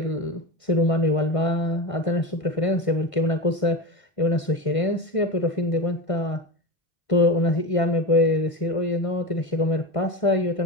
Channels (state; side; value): late; right; 1.5 ms